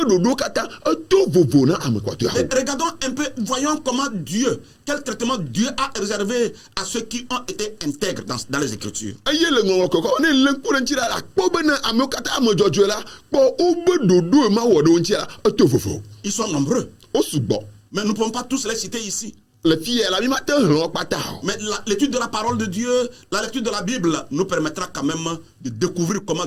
ɖoɖo katã eto vovo na ame kpɔtɔeawo. Regardons un peu, voyons comment Dieu, quel traitement Dieu a réservé à ceux qui ont été intègres dans les Écritures. eye le ŋɔŋlɔ kɔkɔ ne le ŋku ɖe ŋuti la akpɔ be ne amewo katã ame dzɔdzɔe la kpɔ wobe ɖoɖo ma wɔ ɖe wo ŋuti la eto vovo. Ils sont nombreux, Wo sugbɔ. mais nous ne pouvons pas tous les citer ici. Le fia la mi ma te hlɔ kpata o. Mais l'étude de la parole de Dieu, la lecture de la Bible nous permettra quand même de découvrir comment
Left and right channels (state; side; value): identical; both; correlation 1.00